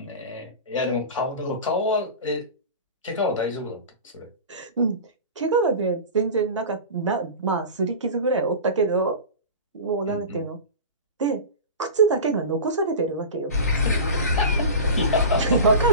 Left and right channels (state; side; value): inverted; both; correlation -0.30